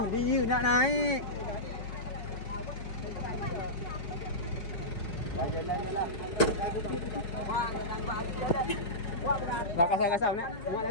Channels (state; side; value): late; right; 4.9 ms